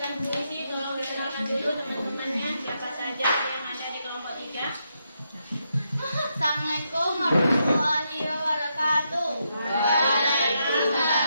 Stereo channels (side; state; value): both; inverted; correlation -0.81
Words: puisi, tolong dikenalkan dulu teman-temannya siapa saja yang ada di kelompok 3. Assalamualaikum warahmatullahi wabarakatuh.